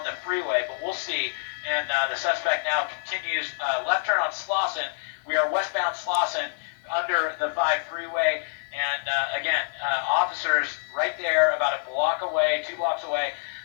the freeway, but we'll see. And the suspect now continues left turn on Slauson. We are westbound Slauson under the 5 freeway. And again, officers right there about a block away, 2 blocks away.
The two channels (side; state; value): right; silent; 61 dB below the other